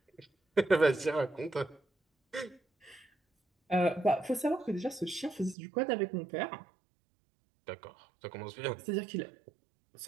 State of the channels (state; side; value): drops out; left; at 5.6 s